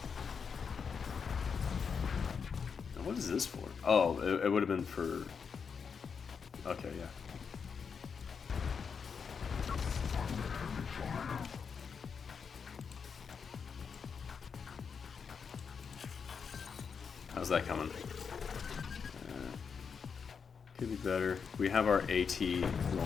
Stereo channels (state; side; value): quieter; right; 6.1 dB